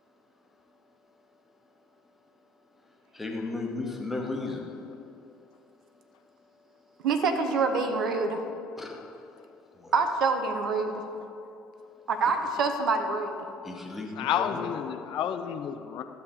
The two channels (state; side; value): normal; both; correlation 0.51